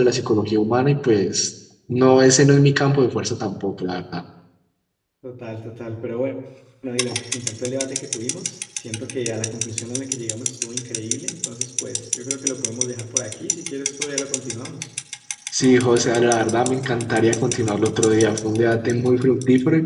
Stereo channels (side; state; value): both; identical; correlation 1.00